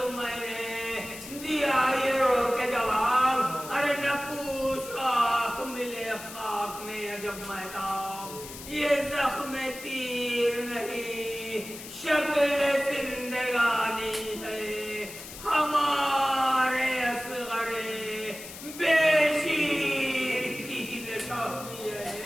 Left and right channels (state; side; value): noise; left; hiss, 13 dB below the sound